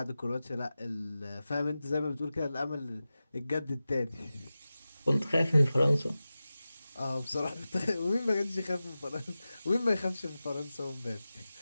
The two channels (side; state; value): both; inverted; correlation -0.95